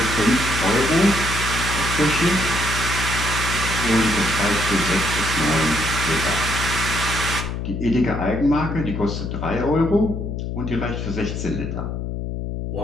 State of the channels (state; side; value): noise; left; hum, 4 dB below the sound